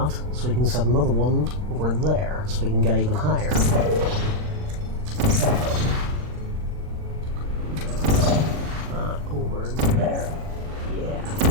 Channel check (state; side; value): late; left; 40 ms